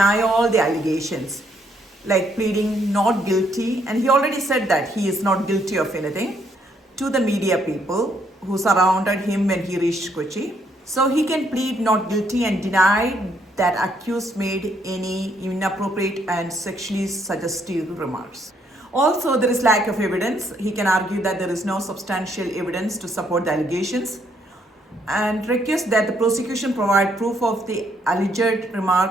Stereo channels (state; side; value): normal; both; correlation 0.71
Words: all the allegations, like pleading not guilty, and he already said that he is not guilty of anything to the media people who surrounded him when he reached Kochi. So he can plead not guilty and deny that accused made any inappropriate and sexually suggestive remarks. Also, there is lack of evidence. He can argue that there is no substantial evidence to support the allegations and request that the prosecution provide proof of the alleged